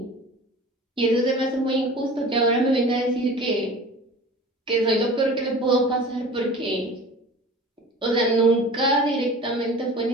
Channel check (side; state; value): both; normal; correlation 0.40